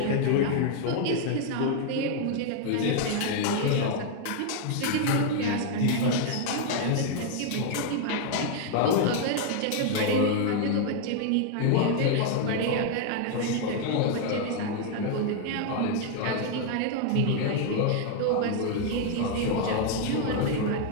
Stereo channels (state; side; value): different; both; correlation 0.00